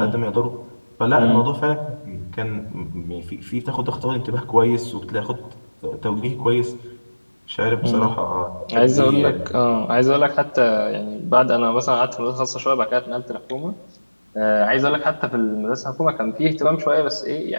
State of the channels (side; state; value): both; inverted; correlation -1.00